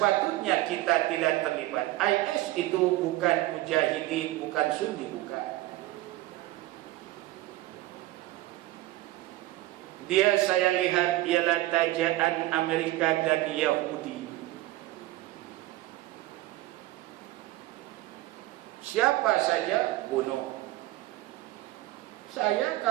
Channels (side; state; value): left; quieter; 17.2 dB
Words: kita tidak terlibat. IS itu bukan mujahidin, bukan Sunni, bukan. Dia saya lihat ialah tajaan Amerika dan Yahudi. Siapa saja bunuh. Saya